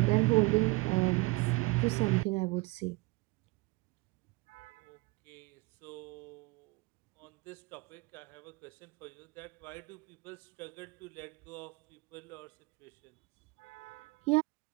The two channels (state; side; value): quieter; left; 23.3 dB